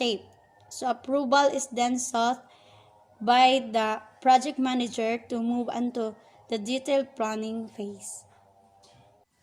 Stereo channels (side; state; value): both; identical; correlation 1.00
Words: So approval is then sought by the project manager to move on to the detailed planning phase.